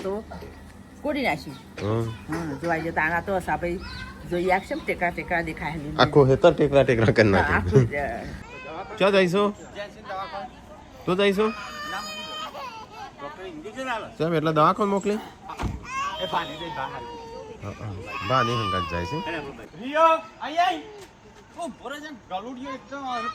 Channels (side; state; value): both; identical; correlation 1.00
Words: તો ગોળી નાખી. હમ. હા જોવાઈ જતા આના તો આપણે જોઈએ આખશે ને ટેકરા ટેકરા દેખાય. આખું હેતર ટેકરા ટેકરા કરી હા, આખું નાખ્યું ક્યાં જઈશું તું જઈશું સાહેબ એટલે દવાખાને મોકલી બા નહીં હંગાત જાય છે